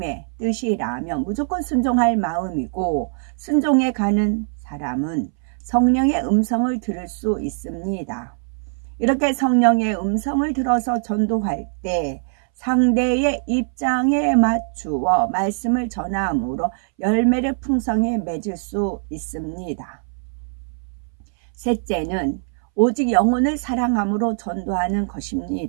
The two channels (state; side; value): silent; left; 62 dB below the other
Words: 뜻이라면 무조건 순종할 마음이고 순종해 가는 사람은 성령의 음성을 들을 수 있습니다. 이렇게 성령의 음성을 들어서 전도할 때 상대의 입장에 맞추어 말씀을 전함으로 열매를 풍성히 맺을 수 있습니다. 셋째는 오직 영혼을 사랑함으로 전도하는